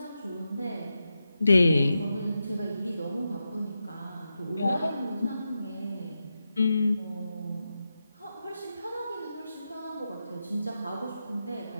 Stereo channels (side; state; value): both; inverted; correlation -0.89